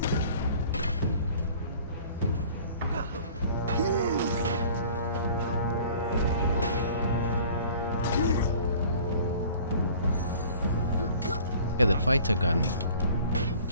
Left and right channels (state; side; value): inverted; both; correlation -0.49